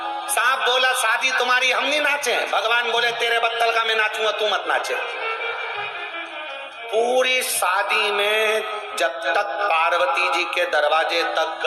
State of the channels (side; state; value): both; identical; correlation 1.00